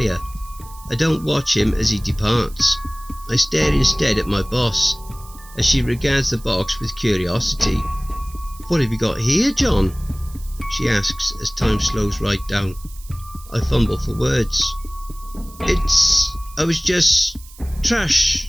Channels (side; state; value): right; noise; hiss, 21 dB below the sound